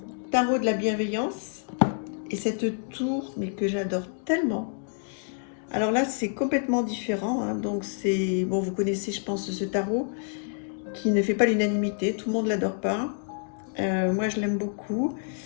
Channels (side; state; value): right; silent; 60 dB below the other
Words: tarot de la bienveillance. Et cette tour, mais que j'adore tellement. Alors là, c'est complètement différent. Hein. Donc c'est, bon, vous connaissez, je pense, ce tarot qui ne fait pas l'unanimité. Tout le monde ne l'adore pas. Moi, je l'aime beaucoup.